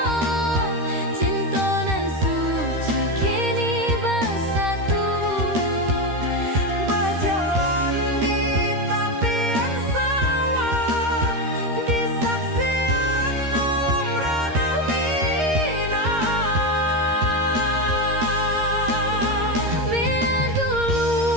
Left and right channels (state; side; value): late; left; 13 ms